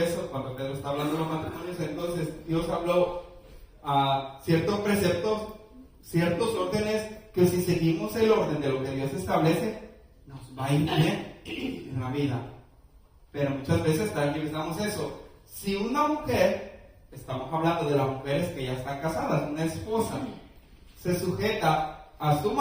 cuando Pedro está hablando de los matrimonios, entonces Dios habló a ciertos preceptos, ciertos órdenes, que si seguimos el orden de lo que Dios establece, nos va a ir bien en la vida. Pero muchas veces tranquilizamos eso. Si una mujer, estamos hablando de las mujeres que ya están casadas, una esposa, se sujeta a su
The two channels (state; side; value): identical; both; correlation 1.00